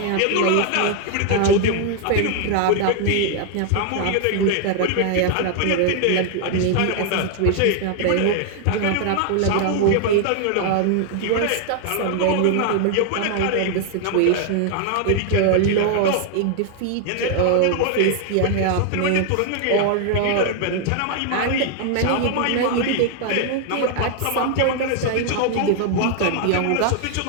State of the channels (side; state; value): both; different; correlation 0.00